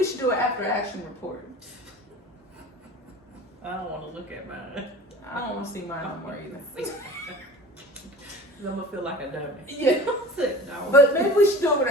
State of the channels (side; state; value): both; normal; correlation 0.39